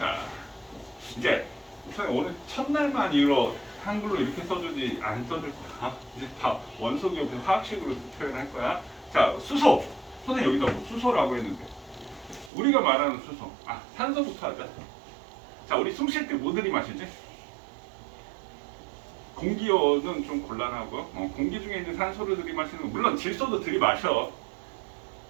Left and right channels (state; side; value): drops out; left; at 12.5 s